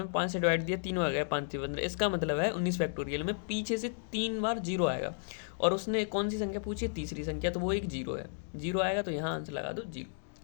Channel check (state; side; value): silent; right; digital silence